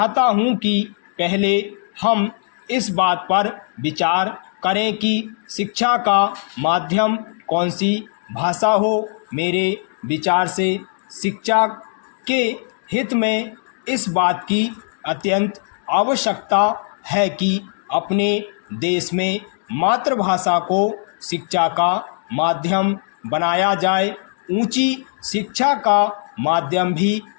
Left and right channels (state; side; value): silent; right; digital silence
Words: हूं कि पहले हम इस बात पर विचार करें कि शिक्षा का माध्यम कौन सी भाषा हो। मेरे विचार से शिक्षा के हित में इस बात की अत्यंत आवश्यकता है कि अपने देश में मातृभाषा को शिक्षा का माध्यम बनाया जाए। ऊंची शिक्षा का माध्यम भी